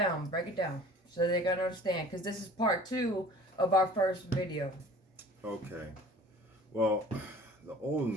so they're gonna understand. Because this is part 2 of our first video. Okay. Well, the old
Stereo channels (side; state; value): both; normal; correlation 0.46